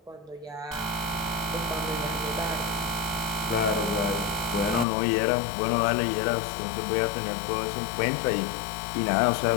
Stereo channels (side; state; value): right; drops out; at 4.9 s